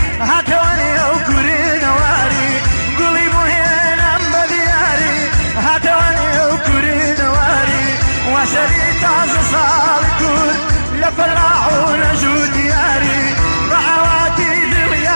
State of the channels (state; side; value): inverted; both; correlation -1.00